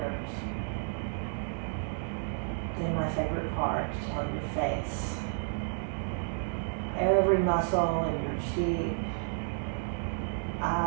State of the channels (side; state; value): left; silent; digital silence